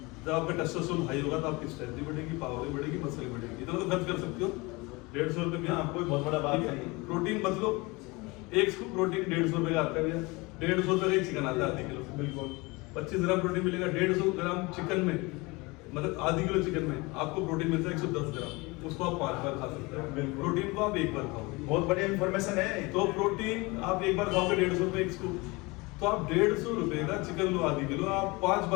जब आपका टेस्टोस्टेरोन हाई होगा तो आपकी स्ट्रेंथ भी बढ़ेगी, पावर भी बढ़ेगी, मसल भी बढ़ेगी। इतना तो खर्च कर सकते हो 150 रुपये में। हाँ, कोई बहुत बड़ा बात नहीं। प्रोटीन मत लो, एक स्कूप प्रोटीन 150 रुपये का आता है भैया। 150 रुपये का एक चिकन आता है आधे किलो, बिल्कुल। 25 ग्राम प्रोटीन मिलेगा 150 ग्राम चिकन में, मतलब आधी किलो चिकन में आपको प्रोटीन मिलता है 110 ग्राम। उसको आप 5 बार खा सकते हो। प्रोटीन को आप 1 बार खाओ, बहुत बढ़िया इन्फॉर्मेशन है। तो प्रोटीन आप 1 बार खाओगे 150 रुपये एक स्कूप, तो आप 150 रुपये का चिकन लो आधी किलो, आप 5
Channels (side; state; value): right; quieter; 24.7 dB